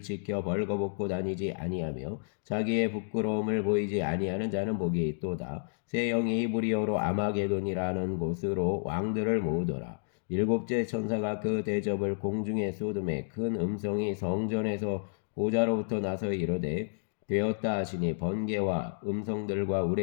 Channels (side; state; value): right; silent; digital silence